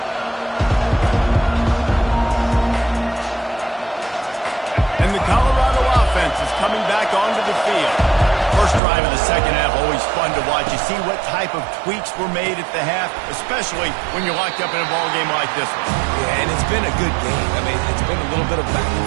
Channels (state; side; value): drops out; left; at 8.8 s